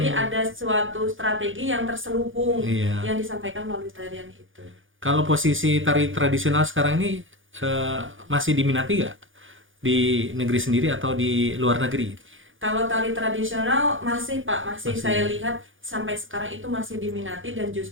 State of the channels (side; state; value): left; late; 0.58 ms